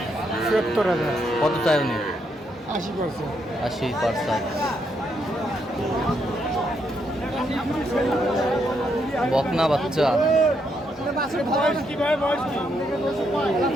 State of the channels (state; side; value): normal; both; correlation 0.77